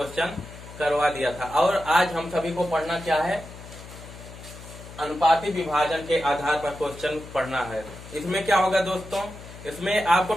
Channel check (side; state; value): left; noise; hum, 15 dB below the sound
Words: करवा दिया था और आज हम सभी को पढ़ना क्या है, अनुपाती विभाजन के आधार पर क्वेश्चन पढ़ना है। इसमें क्या होगा दोस्तों, इसमें आपको